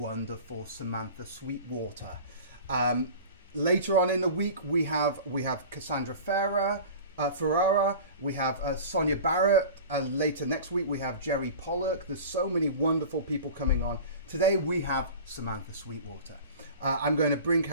Samantha Sweetwater. Later on in the week, we have Cassandra Ferrara, we have Sonia Barrett, and later next week we have Jerry Pollock. There's so many wonderful people coming on. Today we have Samantha Sweetwater. I'm going to bring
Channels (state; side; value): inverted; both; correlation -0.37